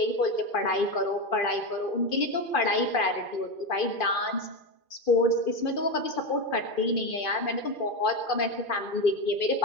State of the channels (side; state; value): right; late; 2.5 ms